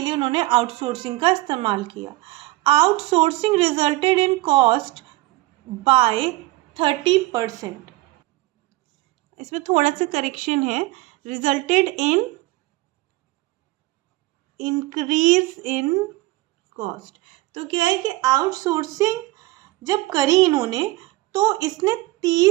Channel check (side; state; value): left; quieter; 19.7 dB